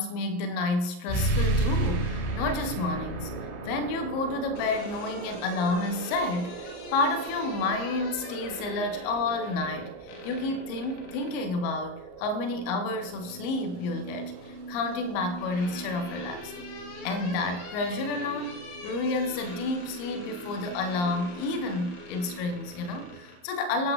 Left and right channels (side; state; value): right; late; 34 ms